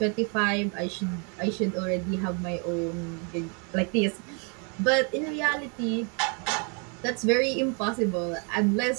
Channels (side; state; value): left; quieter; 36.4 dB